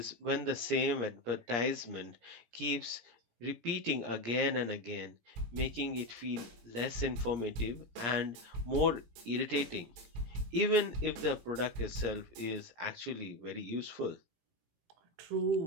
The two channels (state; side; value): late; left; 17 ms